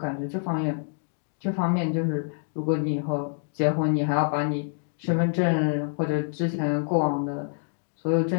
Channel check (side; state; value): right; silent; digital silence